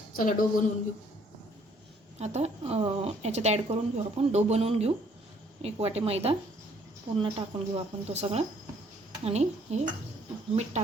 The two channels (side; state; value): both; normal; correlation 0.63